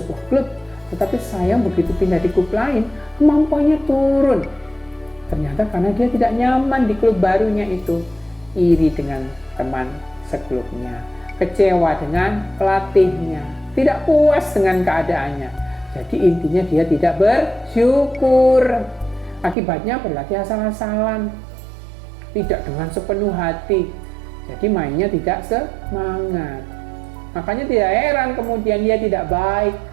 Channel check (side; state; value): left; drops out; at 19.6 s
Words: klub, tetapi sayang begitu pindah di klub lain, kemampuannya turun. Ternyata karena dia tidak nyaman di klub barunya itu, iri dengan teman seklubnya, kecewa dengan pelatihnya, tidak puas dengan keadaannya. Jadi intinya dia tidak bersyukur. Akibatnya berlatih asal-asalan, tidak dengan sepenuh hati. Jadi mainnya tidak semangat. Makanya tidak heran kemudian dia tidak baik